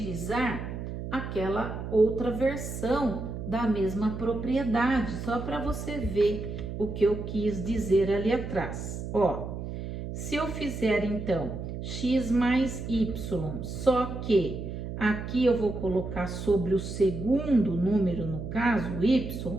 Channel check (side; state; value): right; noise; hum, 7 dB below the sound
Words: aquela outra versão da mesma propriedade, só para você ver o que eu quis dizer ali atrás. Ó, se eu fizer então x mais y, só que aqui eu vou colocar sobre o segundo número, no caso